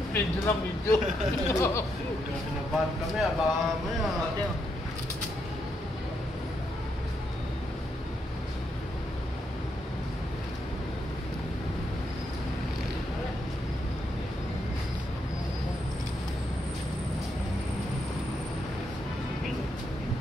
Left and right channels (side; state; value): both; normal; correlation 0.79